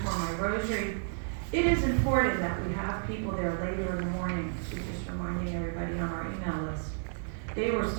for my rosary. It is important that we have people there later in the morning. She's just reminding everybody on our email list. They were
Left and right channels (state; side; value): silent; left; 57 dB below the other